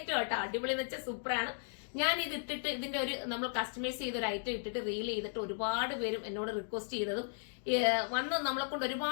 കേട്ടോ. അടിപൊളി എന്ന് വെച്ചാൽ സൂപ്പറാണ്. ഞാൻ ഇത് ഇട്ടിട്ട് ഇതിന്റെ ഒരു നമ്മൾ കസ്റ്റമൈസ് ചെയ്ത ഒരു ഐറ്റം ഇട്ടിട്ട് റീൽ ചെയ്തിട്ട് ഒരുപാട് പേരും എന്നോട് റിക്വസ്റ്റ് ചെയ്തതും വന്ന് നമ്മളെ കൊണ്ട്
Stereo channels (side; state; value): right; silent; digital silence